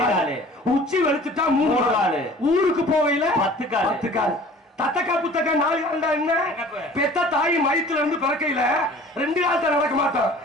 உச்சி வெளுத்துட்டா 3 கால், ஊருக்கு போகையில 10 கால். தத்தக்கா புத்தக்கா 4 கால்டா என்ன? பெத்த தாய் மயத்துல இருந்து பிறக்கையில 2 காலத்தை நடக்க மாட்டோம்.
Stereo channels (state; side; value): normal; both; correlation 0.47